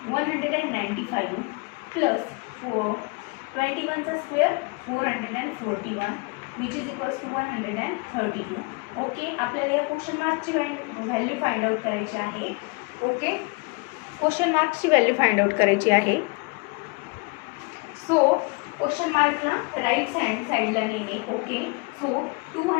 195 प्लस 21चा square 441 which is equals to 132. Okay, आपल्याला या क्वेश्चन मार्कची व्हॅल्यू फाइंड आउट करायची आहे. Okay, question मार्कची value find out करायची आहे. सो क्वेश्चन मार्कला राईट हँड साईडला नेणे. Okay, so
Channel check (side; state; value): right; quieter; 30.1 dB